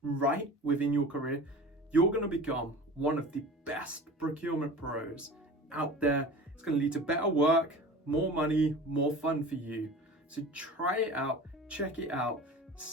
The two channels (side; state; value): both; normal; correlation 0.37